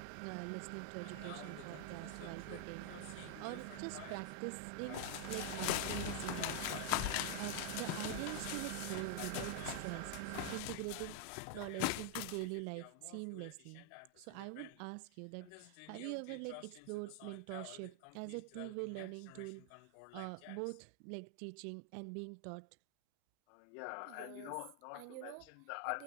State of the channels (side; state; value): both; different; correlation 0.00